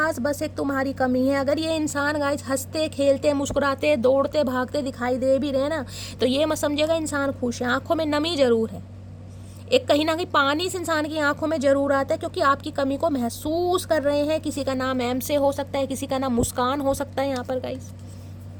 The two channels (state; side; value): identical; both; correlation 1.00